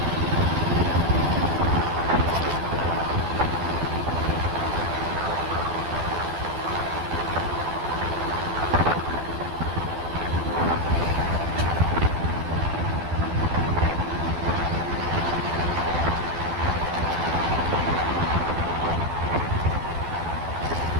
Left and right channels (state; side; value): late; left; 12 ms